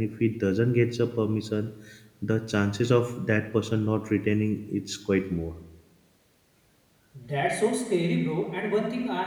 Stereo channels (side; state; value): both; identical; correlation 1.00